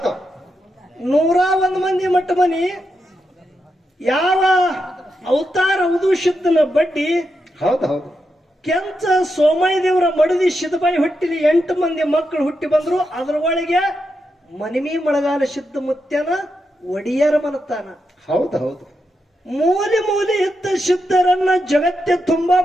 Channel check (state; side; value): normal; both; correlation 0.85